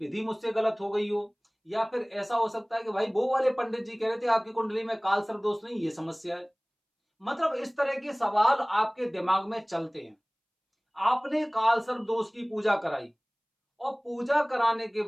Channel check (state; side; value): identical; both; correlation 1.00